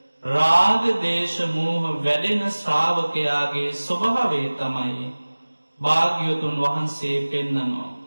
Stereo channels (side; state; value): both; inverted; correlation -1.00